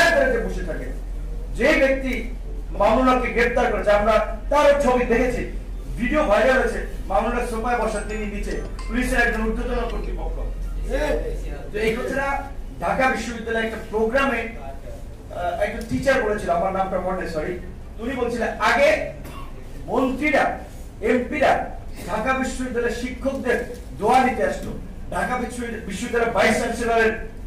তলাতে বসে থাকে। যে ব্যক্তি মামুনুলকে গ্রেপ্তার করেছে, আমরা তার ছবি দেখেছি, ভিডিও ভাইরাল হয়েছে, মামুনুল সোফায় বসা, তিনি নিচে, পুলিশের একজন ঊর্ধ্বতন কর্তৃপক্ষ। এই কথাটা ঢাকা বিশ্ববিদ্যালয়ের একটা প্রোগ্রামে একটা টিচার বলেছিল, আমার নামটা মনে সরি, উনি বলছিলেন আগে মন্ত্রীরা, এমপিরা ঢাকা বিশ্ববিদ্যালয়ের শিক্ষকদের দোয়া নিতে আসতো, ঢাকা বিশ্ববিদ্যালয়ের ভাইস চ্যান্সেলরের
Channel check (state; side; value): identical; both; correlation 1.00